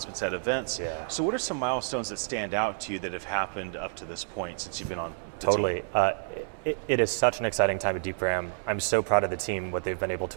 at events. Yeah. So what are some milestones that stand out to you that have happened up to this point since you've been on the Totally. It is such an exciting time at Deepgram. I'm so proud of the team, what they've been able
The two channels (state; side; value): silent; left; digital silence